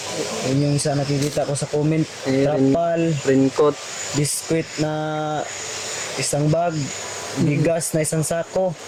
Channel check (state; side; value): identical; both; correlation 1.00